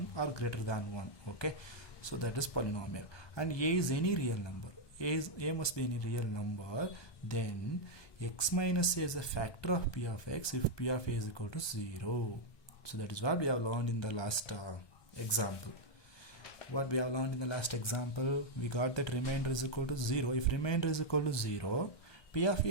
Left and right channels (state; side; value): late; right; 1.2 ms